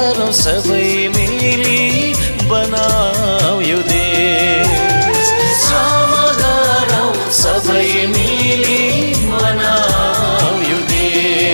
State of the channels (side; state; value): both; inverted; correlation -1.00